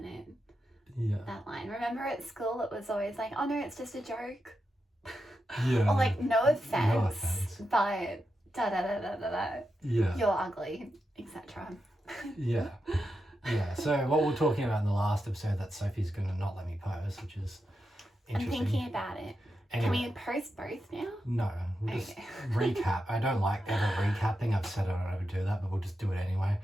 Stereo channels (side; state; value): both; normal; correlation 0.87